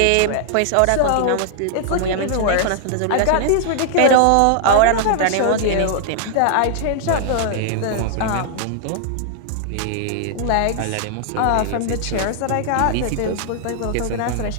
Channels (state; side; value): different; both; correlation -0.01